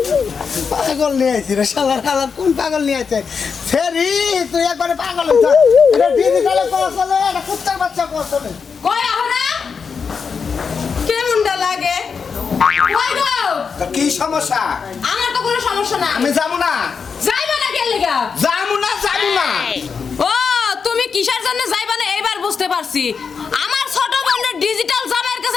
পাগল নিয়ে আইছি রে শালার শালার কোন পাগল নিয়ে আইছে ফেরি তুই একবারে পাগল হইছ এটা ডিজিটালে কোর্স হলো এটা কুত্তার বাচ্চা কোর্স হলো কই আহরা কেমনটা লাগে কই গো কি সমস্যা আমার তো কোনো সমস্যা না আমি যাবো না যাইবা না কেন লাগা যাবো না ও তুমি কিসের জন্য যাইবা না এইবার বুঝতে পারছি আমার ছোট বোনের ডিজিটাল জামাইয়ের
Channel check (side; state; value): right; quieter; 5.8 dB